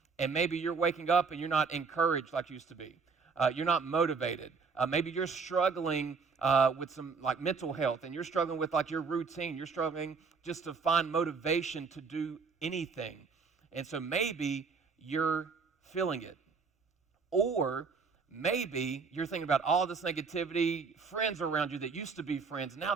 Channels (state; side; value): quieter; left; 5.0 dB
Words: And maybe you're waking up and you're not encouraged like you used to be. You're not motivated. Maybe you're struggling with some like mental health, and you're struggling with like your routine. You're struggling just to find motivation to do anything. And so maybe you're feeling it. Or maybe you're thinking about all this negativity, friends around you that used to be friends, now